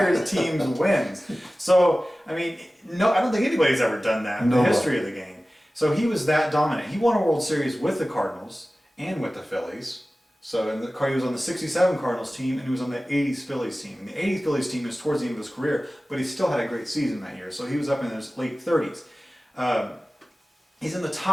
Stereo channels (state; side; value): normal; both; correlation 0.96